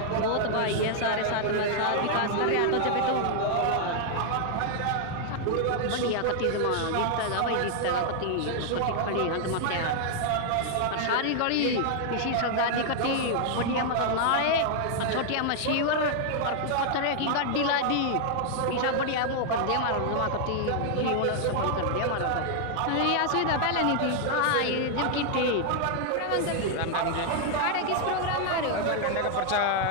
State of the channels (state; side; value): different; both; correlation 0.00